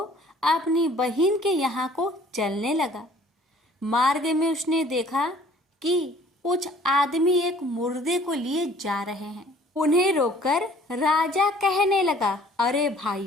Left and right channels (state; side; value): normal; both; correlation 0.54